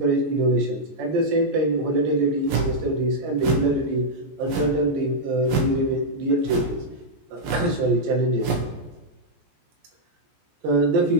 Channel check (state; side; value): late; left; 14 ms